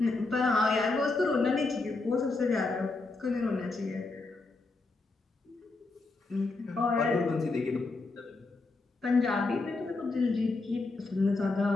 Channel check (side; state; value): right; quieter; 3.5 dB